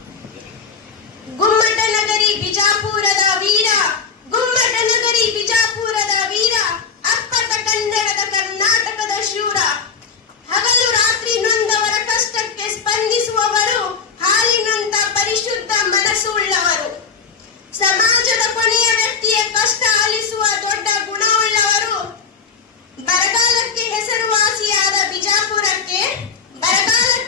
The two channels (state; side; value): quieter; right; 5.9 dB